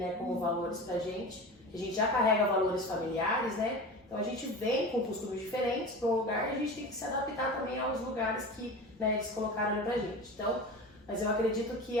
como valores pra gente. A gente já carrega valores familiares, né, então a gente vem com costumes diferentes para um lugar e a gente tem que se adaptar também aos lugares que, né, eles colocaram ali pra gente. Então, mas eu acredito que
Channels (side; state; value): both; normal; correlation 0.31